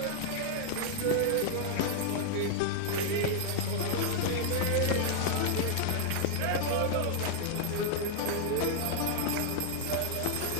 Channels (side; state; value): both; different; correlation 0.00